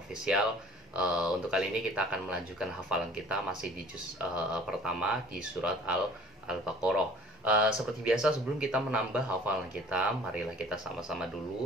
Untuk kali ini kita akan melanjutkan hafalan kita masih di juz pertama di surat Al-Baqarah. Seperti biasa, sebelum kita menambah hafalan kita, marilah kita sama-sama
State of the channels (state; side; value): normal; both; correlation 0.50